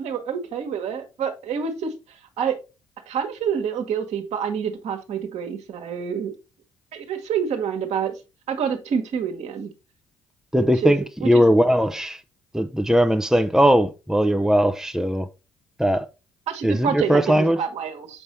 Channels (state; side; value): normal; both; correlation 0.84